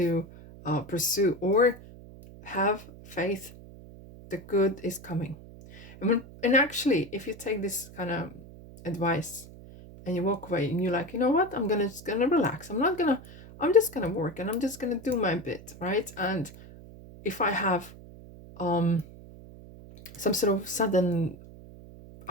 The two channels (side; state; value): right; noise; hum, 18 dB below the sound